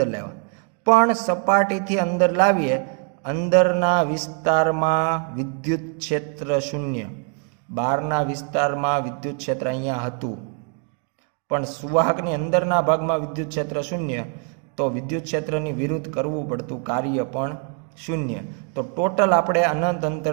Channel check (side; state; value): left; quieter; 38.6 dB